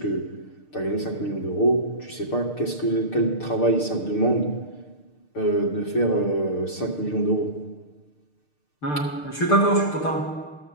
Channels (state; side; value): late; right; 6.6 ms